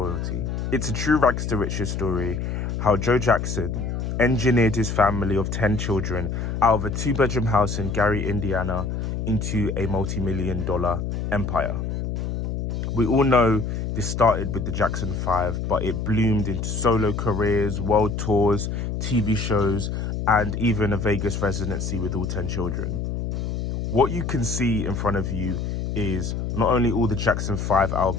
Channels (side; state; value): left; noise; hum, 3 dB below the sound